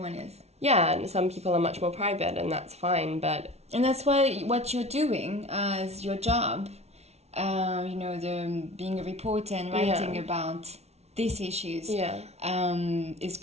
is. yeah, and some people are much more private, and that's fine, but... And that's why what you're doing as your job, being a reporter and writing about these issues is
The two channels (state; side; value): late; left; 0.31 ms